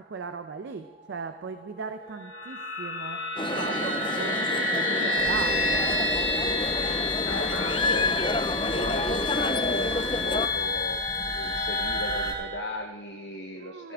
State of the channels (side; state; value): both; normal; correlation 0.09